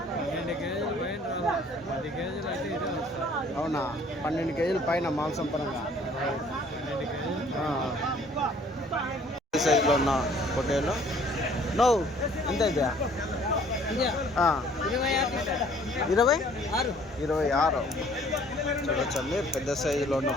12 కేజీలు పైన రాదు, 10 కేజీలు అయితే ఇదే వస్తుంది. అవునా? 12 కేజీల పైన మాంసం పరంగా. 12 కేజీలు సైజులో ఉన్న పొట్టేలు నో ఎంత అయితే? 26 చూడొచ్చండి. పెద్ద సైజులో ఉన్న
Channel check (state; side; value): normal; both; correlation 0.57